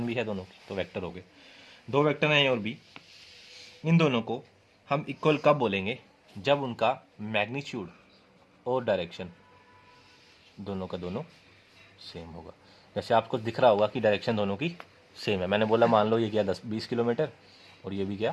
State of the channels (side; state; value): both; identical; correlation 1.00